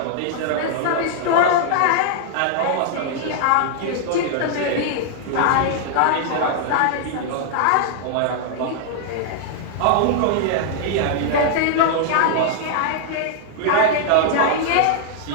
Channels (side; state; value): both; different; correlation -0.01